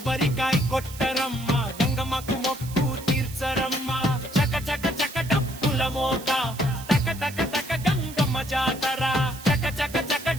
కొట్టరమ్మ. గంగమ్మకు మొక్కు తీర్చరమ్మ. చక చక చక డప్పుల మోత, తక తక తక గంగమ్మ జాతర. చక చక చక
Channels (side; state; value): right; noise; hiss, 15 dB below the sound